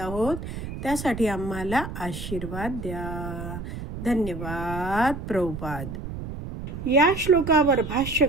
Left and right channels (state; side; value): noise; right; rumble, 8 dB below the sound